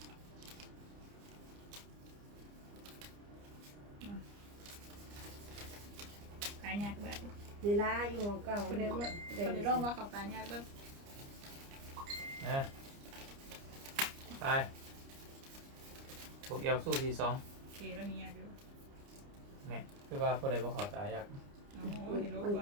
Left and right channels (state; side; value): late; left; 29 ms